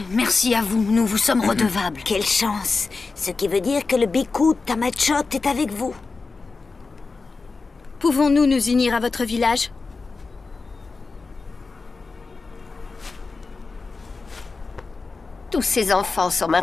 Merci à vous, nous vous sommes redevables. Quelle chance. Ce qui veut dire que le Biku Tamachot est avec vous. Pouvons-nous nous unir à votre village? Tous ces enfants sont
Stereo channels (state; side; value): quieter; right; 4.1 dB